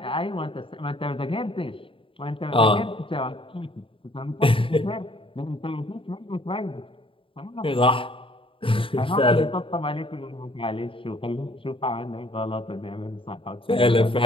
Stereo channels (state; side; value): late; right; 0.26 ms